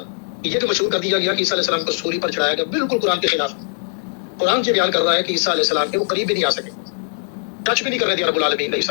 ہے، یہ جو مشہور کر دیا گیا کہ عیسیٰ علیہ السلام کو سولی پر چڑھایا گیا، بالکل قرآن کے خلاف۔ قرآن یہ بیان کر رہا ہے کہ عیسیٰ علیہ السلام کے وہ قریب بھی نہیں آ سکے، ٹچ بھی نہیں کر رہے تھے رب العالمین علیہ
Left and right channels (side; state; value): right; silent; digital silence